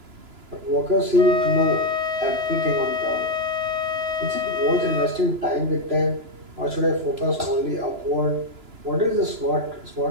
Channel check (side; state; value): left; late; 2.9 ms